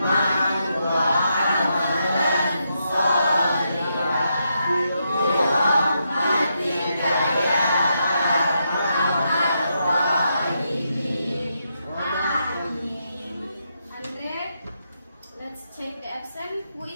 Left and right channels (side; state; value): both; inverted; correlation -0.82